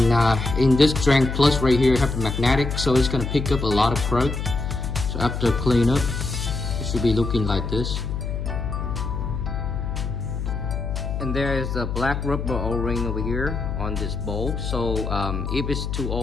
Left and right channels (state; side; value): noise; left; hum, 3 dB below the sound